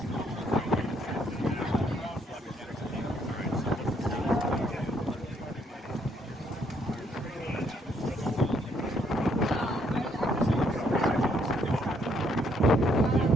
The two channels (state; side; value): normal; both; correlation 0.70